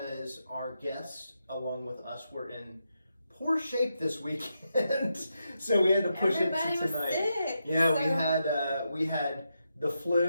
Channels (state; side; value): inverted; both; correlation -0.85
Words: our guests, along with us, were in poor shape this weekend, so we had to push Everybody it to tonight. Was sick, Yeah, so... we had the